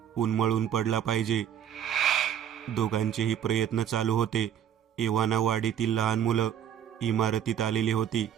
उन्मळून पडला पाहिजे. दोघांचेही प्रयत्न चालू होते. एव्हाना वाडीतील लहान मुलं इमारतीत आलेली होती.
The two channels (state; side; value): quieter; left; 9.5 dB